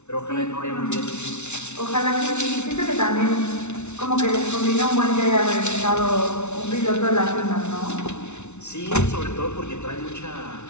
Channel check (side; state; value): right; late; 0.82 ms